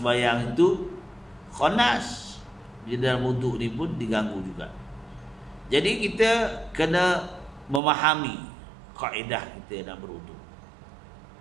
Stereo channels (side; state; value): left; drops out; at 7.8 s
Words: itu, khanas di dalam wuduk ni pun diganggu juga. Jadi kita kena memahami kaedah kita nak berwuduk,